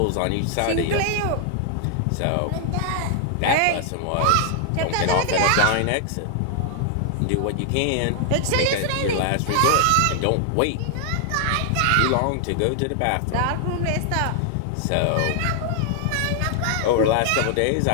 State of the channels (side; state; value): both; different; correlation 0.00